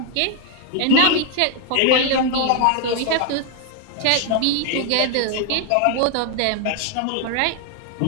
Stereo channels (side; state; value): both; different; correlation 0.00